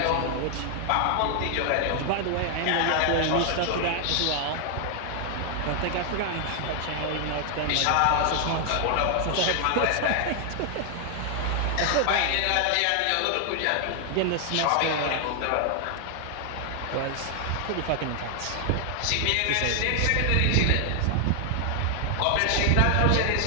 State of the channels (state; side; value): different; both; correlation 0.00